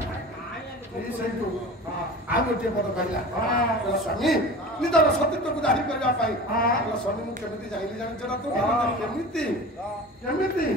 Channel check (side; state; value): both; normal; correlation 0.36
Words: ଆଉ ଗୋଟିଏ ପଦ କହିଲା ସ୍ୱାମୀ ନିଜର ସତୀତ୍ୱକୁ ଜାହିର କରିବା ପାଇଁ ସ୍ୱାମୀ ମୁଁ କେମିତି ଜାଣିଲି ଜାଣିଛ ନା ତୁ କେମିତି କେମିତି